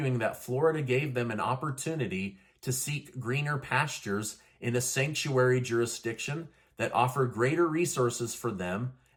that Florida gave them an opportunity to seek greener pastures in a sanctuary jurisdiction that offered greater resources for them,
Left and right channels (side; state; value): both; identical; correlation 1.00